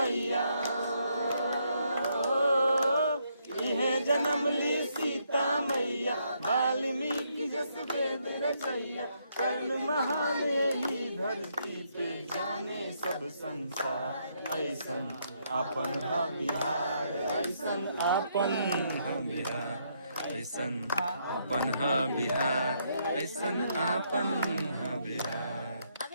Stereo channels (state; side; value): inverted; both; correlation -0.75